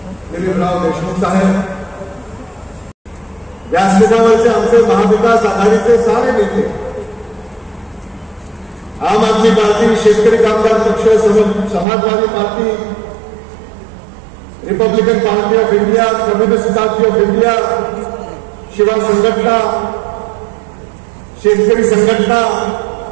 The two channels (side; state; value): left; drops out; at 11.9 s